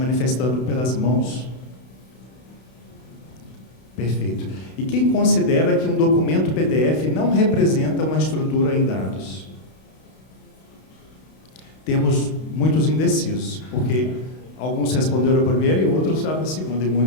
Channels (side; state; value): right; late; 32 ms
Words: pelas mãos. Perfeito. E quem considera que um documento PDF não representa uma estrutura em dados? Temos muitos indecisos, porque alguns responderam a primeira e outros a segunda, e